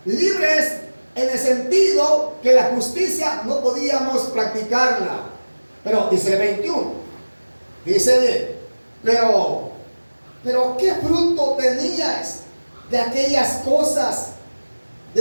libres en el sentido que la justicia no podíamos practicarla. Pero dice el 21, dice bien, pero ¿qué fruto tenías de aquellas cosas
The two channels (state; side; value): inverted; both; correlation -1.00